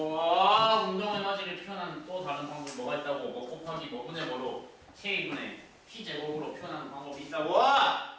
운동 에너지를 표현하는 또 다른 방법이 뭐가 있다고? 뭐 곱하기 뭐분의 뭐로 K분의 P 제곱으로 표현하는 방법이 있다고?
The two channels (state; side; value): identical; both; correlation 1.00